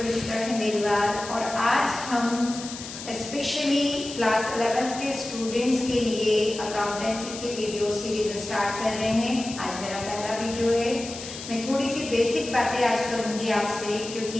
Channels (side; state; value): left; noise; hiss, 11 dB below the sound